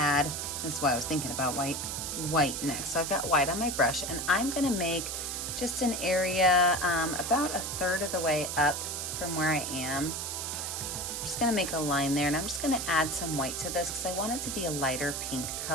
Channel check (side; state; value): right; noise; hiss, 4 dB below the sound